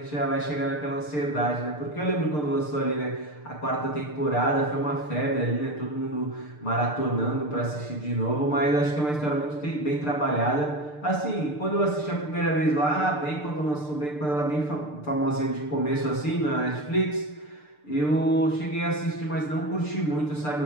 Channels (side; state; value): right; late; 6.7 ms